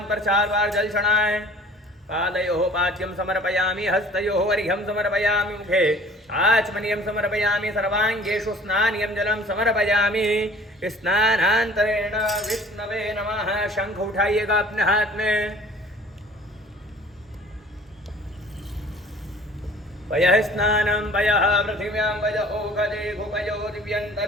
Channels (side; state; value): both; normal; correlation 0.49